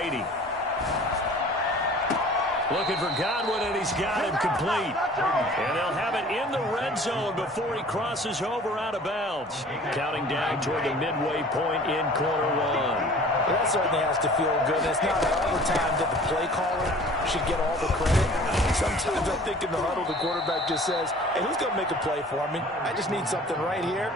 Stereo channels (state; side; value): normal; both; correlation 0.47